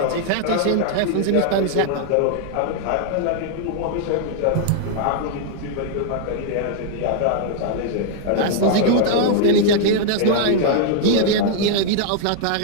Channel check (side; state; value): both; different; correlation 0.00